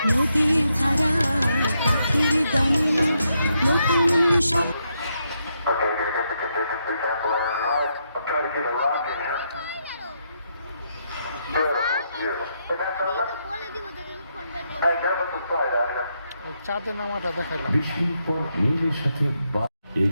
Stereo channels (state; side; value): inverted; both; correlation -0.80